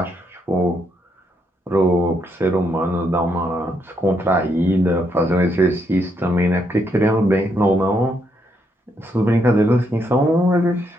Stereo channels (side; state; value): both; normal; correlation 0.76